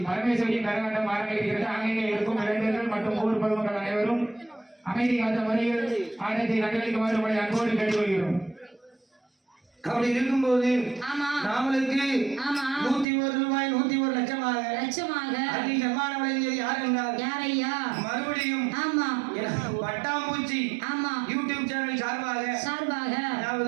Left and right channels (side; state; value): left; drops out; at 13.1 s